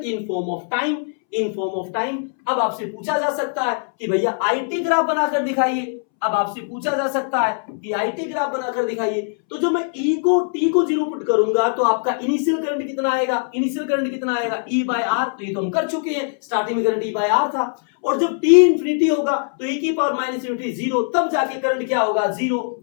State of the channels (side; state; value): right; silent; 65 dB below the other